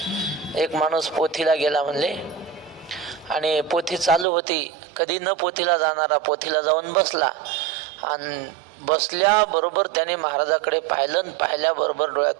एक माणूस पोथीला गेला म्हणले, आणि पोथी चालू होती. कधी न पोथीला जाणारा पोथीला जाऊन बसला, आणि बसल्याबरोबर त्याने महाराजाकडे पाहिलं, आणि पाहिल्याबरोबर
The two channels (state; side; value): drops out; left; at 4.2 s